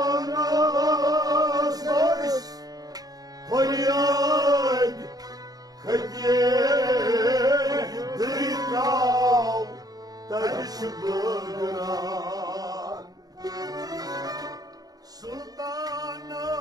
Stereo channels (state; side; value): late; left; 0.18 ms